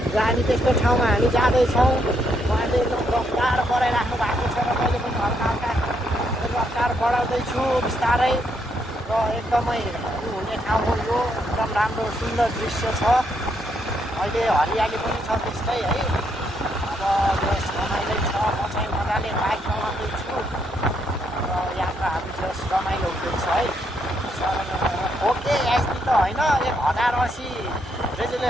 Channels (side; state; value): both; normal; correlation 0.76